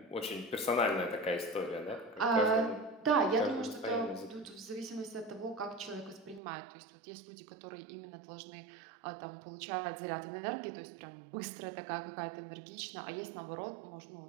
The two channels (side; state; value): left; drops out; at 6.4 s